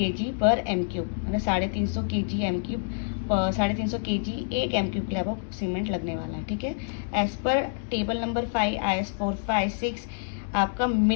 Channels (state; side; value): silent; right; digital silence